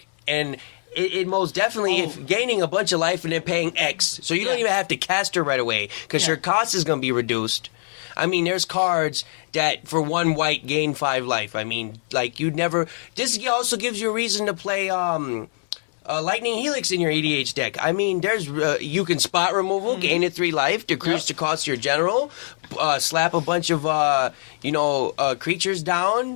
and it most definitely is gaining a bunch of life and then paying X. So you don't even have to cast her right away because your cost is going to be reduced. I mean, there's cards that for 1 white gain 5 life. I mean, like you'd never. This also gives you a reason to play Lightning Helix in your EDH deck. I mean, there's you can spot removal, gain it 3 life, decrease the cost of your general, slap a bunch of creatures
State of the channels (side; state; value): right; silent; 63 dB below the other